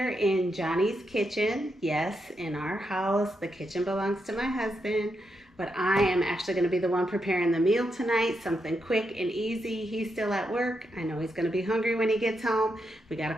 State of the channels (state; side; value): normal; both; correlation 0.83